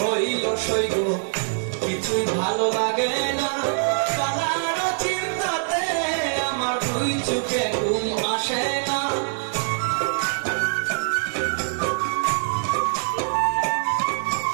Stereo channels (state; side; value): silent; left; digital silence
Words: হইল সইগ, কিছুই ভালো লাগে না। কালার চিন্তাতে আমার দুই চোখে ঘুম আসে না।